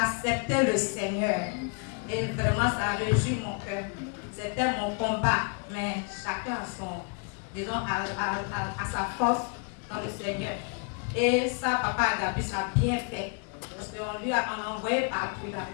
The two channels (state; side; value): quieter; right; 38.2 dB